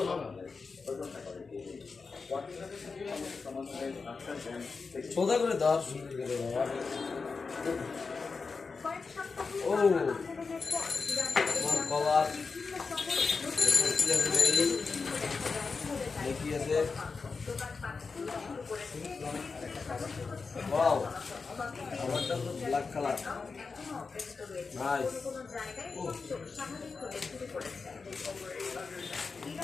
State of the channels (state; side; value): quieter; right; 4.6 dB